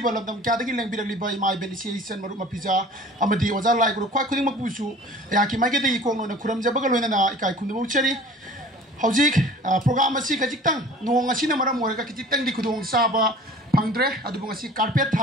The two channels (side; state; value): both; normal; correlation 0.45